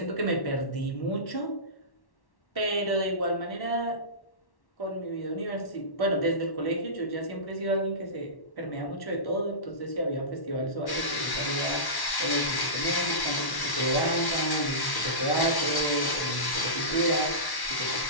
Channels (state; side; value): late; right; 1.1 ms